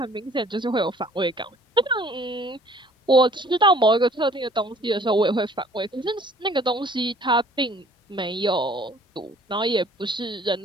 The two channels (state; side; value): normal; both; correlation 0.55